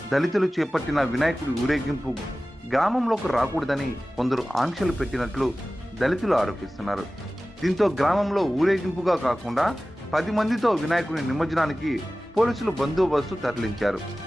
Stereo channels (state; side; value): normal; both; correlation 0.96